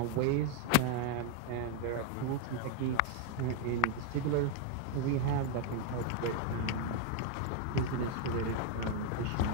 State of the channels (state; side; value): different; both; correlation 0.01